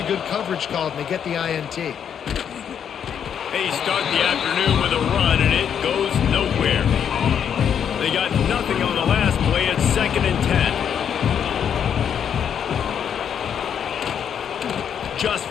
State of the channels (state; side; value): quieter; right; 8.3 dB